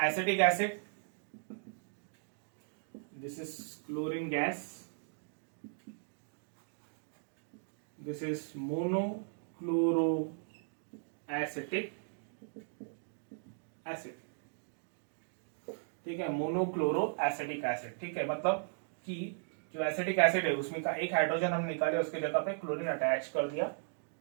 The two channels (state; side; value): silent; left; digital silence